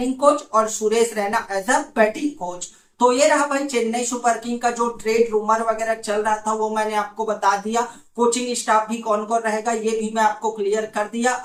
coach और Suresh Raina as a batting coach. तो ये रहा भाई चेन्नई सुपर किंग का जो ट्रेड रूमर वगैरह चल रहा था वो मैंने आपको बता दिया। कोचिंग स्टाफ भी कौन कौन रहेगा ये भी मैं आपको क्लियर कर दिया।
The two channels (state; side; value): identical; both; correlation 1.00